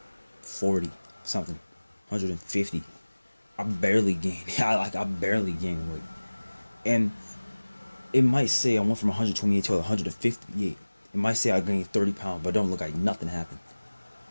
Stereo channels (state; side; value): inverted; both; correlation -1.00